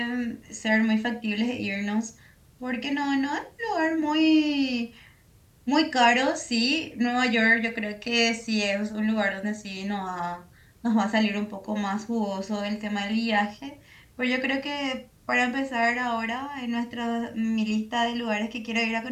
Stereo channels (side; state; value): both; identical; correlation 1.00